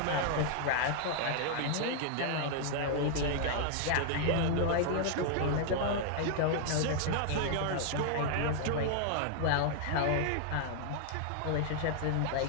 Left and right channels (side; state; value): both; different; correlation 0.00